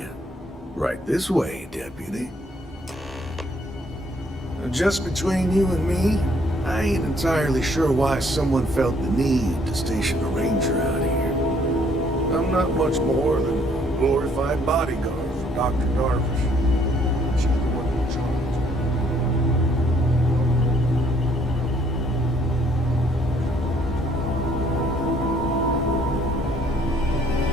Right this way, deputy. Just between you and me, I ain't entirely sure why someone felt the need to station a ranger out here. I'm not much more than a glorified bodyguard for Dr. Darvish. She's the one in charge.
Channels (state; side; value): normal; both; correlation 0.65